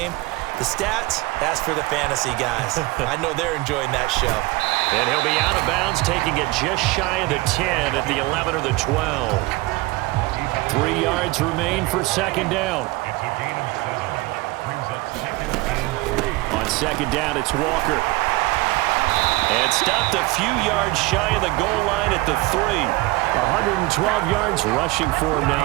The stats, that's for the fantasy guys. I know they're enjoying that show. And he'll be out of bounds, taking it just shy of the 10 at the 11 or the 12. 3 yards remain for second down. On second down, it's Walker. And stopped a few yards shy of the goal line at the 3. 112 yards rushing for him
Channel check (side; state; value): left; quieter; 21.6 dB